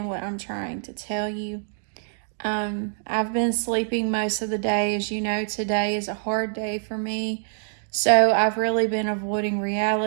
what I'm trying to tell you. I've been sleeping most of the day. As you know, today is a hard day for me. So I've really been avoiding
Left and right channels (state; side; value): silent; left; digital silence